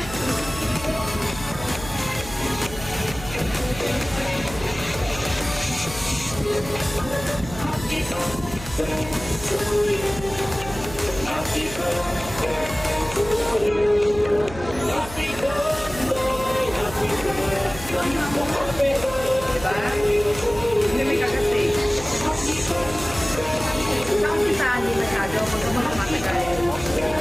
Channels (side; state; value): right; noise; hum, 13 dB below the sound